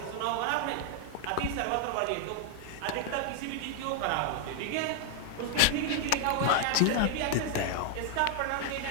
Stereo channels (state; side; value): different; both; correlation 0.00